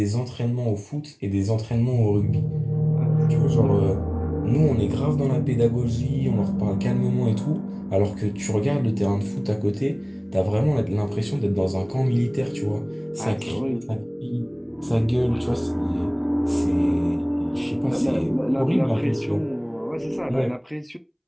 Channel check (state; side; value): identical; both; correlation 1.00